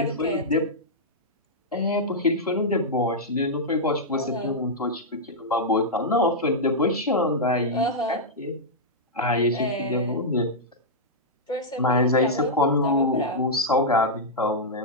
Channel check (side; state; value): both; normal; correlation -0.07